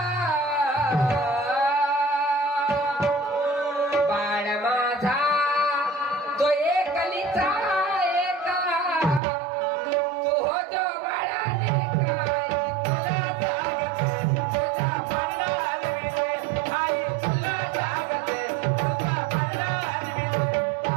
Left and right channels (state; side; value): drops out; left; at 9.2 s